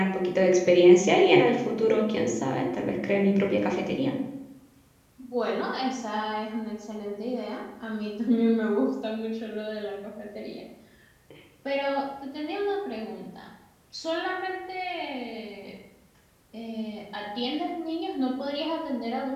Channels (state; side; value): identical; both; correlation 1.00